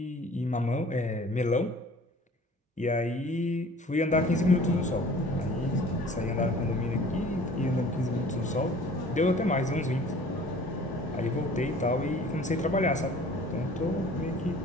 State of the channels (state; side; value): normal; both; correlation 0.49